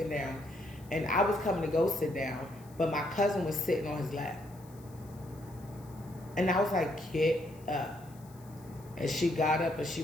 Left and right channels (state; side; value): noise; left; hiss, 25 dB below the sound